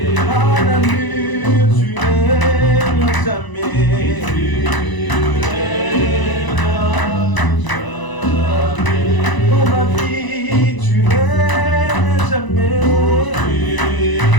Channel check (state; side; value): late; right; 1.0 ms